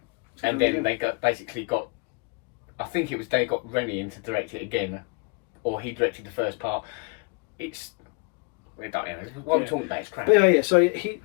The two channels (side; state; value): right; quieter; 32.3 dB